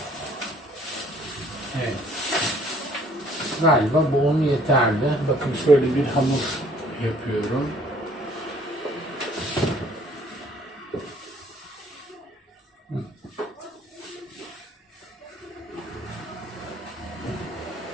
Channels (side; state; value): both; normal; correlation 0.58